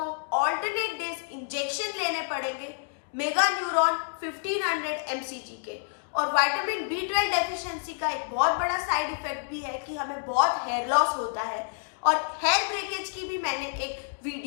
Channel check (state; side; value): silent; right; digital silence